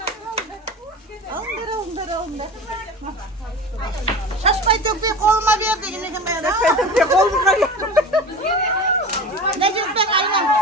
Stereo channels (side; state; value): both; normal; correlation 0.32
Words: Alındır. Şaşmay tökpey koluma ver de yine ben. Şaşmay tökpey koluma ver. Ne diyorsun ben aynen.